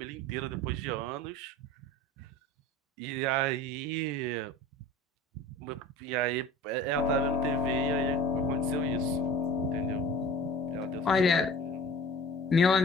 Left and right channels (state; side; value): normal; both; correlation 0.42